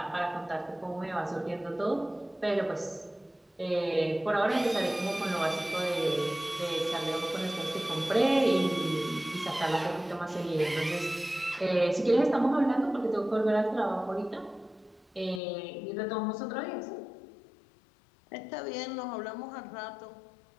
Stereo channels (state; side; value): drops out; right; at 15.4 s